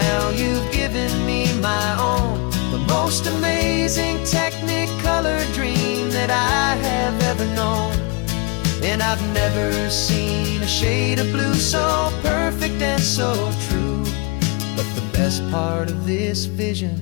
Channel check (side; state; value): right; quieter; 30.2 dB